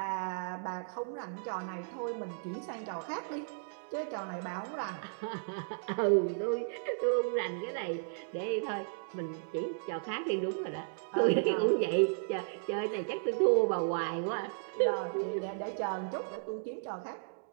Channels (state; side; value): silent; left; digital silence